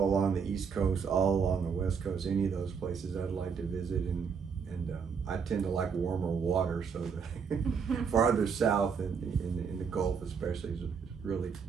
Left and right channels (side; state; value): left; quieter; 6.2 dB